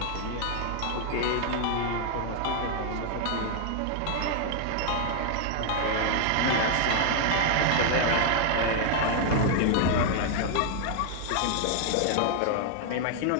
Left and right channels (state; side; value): different; both; correlation 0.00